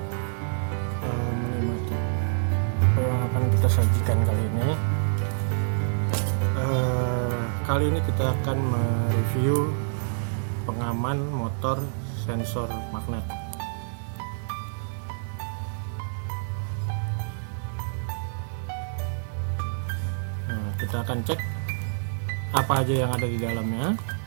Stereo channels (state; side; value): silent; left; digital silence